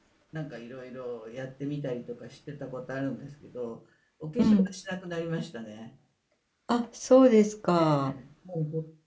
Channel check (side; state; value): both; identical; correlation 1.00